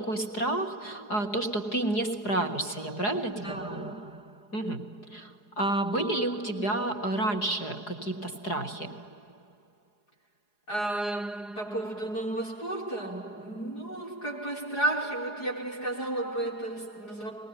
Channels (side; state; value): right; late; 4.8 ms